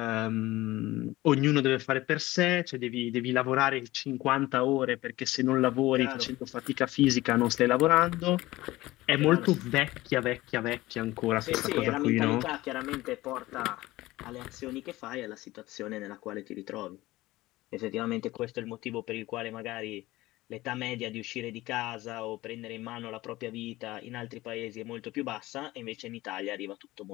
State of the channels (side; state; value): right; quieter; 18.1 dB